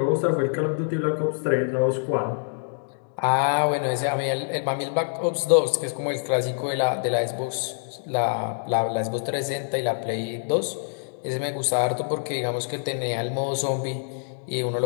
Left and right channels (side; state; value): right; silent; digital silence